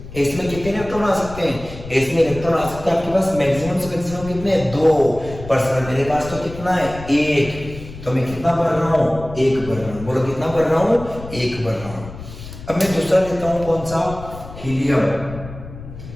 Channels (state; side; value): noise; left; rumble, 13 dB below the sound